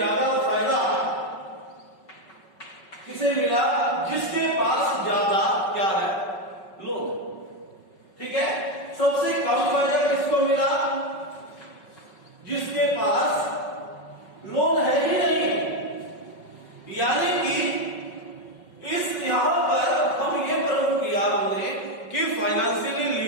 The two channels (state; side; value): late; right; 5.3 ms